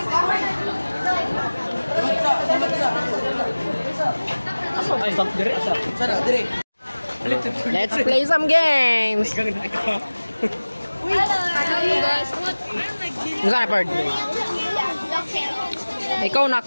Let's play some games. Hello guys, what? Saan na, Perd? Ikaw na,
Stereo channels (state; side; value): inverted; both; correlation -1.00